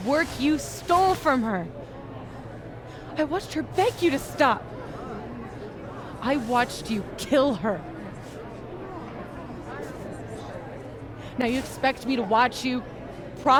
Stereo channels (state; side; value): identical; both; correlation 1.00